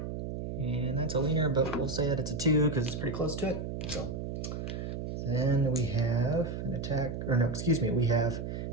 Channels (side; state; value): right; noise; hum, 5 dB below the sound